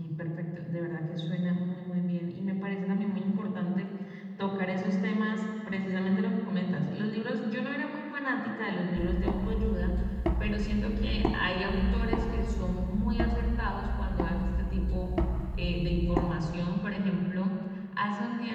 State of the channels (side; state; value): both; identical; correlation 1.00